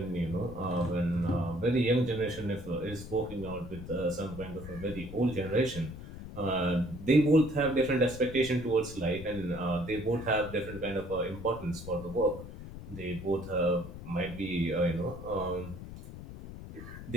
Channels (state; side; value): noise; left; rumble, 12 dB below the sound